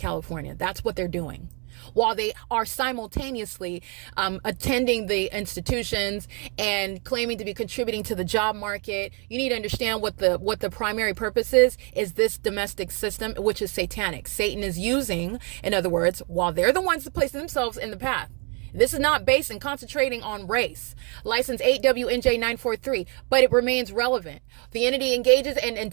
That's what they're doing, while they are simultaneously attending the institutions and claiming to be contributing to the job market. You need to understand what the primary purpose is this domestic system, which is satanic. Satan is using, in other words, while they're the ones that place themselves in the path. This is not based and concentrating on race. License 8WNJ943, but it remains relevant. The entity engages and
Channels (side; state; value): left; quieter; 33.5 dB